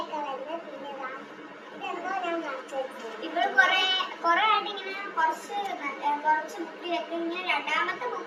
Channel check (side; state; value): both; identical; correlation 1.00